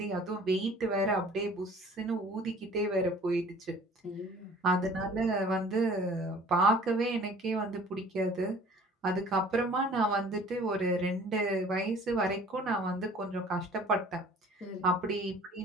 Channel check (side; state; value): both; normal; correlation 0.49